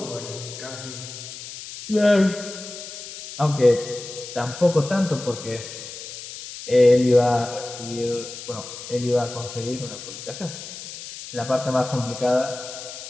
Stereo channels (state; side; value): noise; left; hiss, 11 dB below the sound